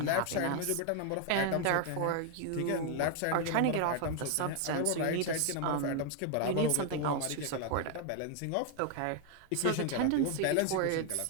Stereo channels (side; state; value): both; different; correlation 0.00